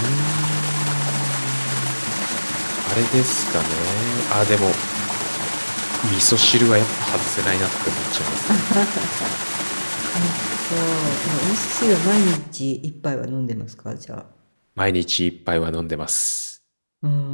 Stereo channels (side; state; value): both; inverted; correlation -1.00